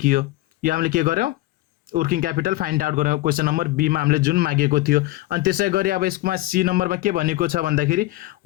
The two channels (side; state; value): right; quieter; 17.8 dB